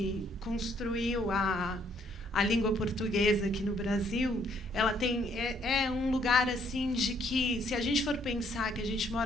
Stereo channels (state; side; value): normal; both; correlation 0.67